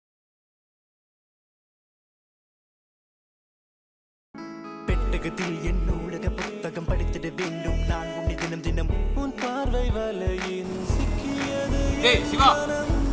பெட்டகத்தில் என் நூலக புத்தகம் படித்திட வேண்டும் நான் உன்னை தினம் தினம் உன் பார்வை வலையின் சிக்கியது. ஏய் சிவா,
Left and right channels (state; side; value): identical; both; correlation 1.00